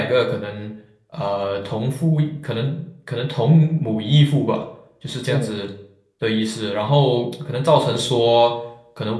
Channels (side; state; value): both; identical; correlation 1.00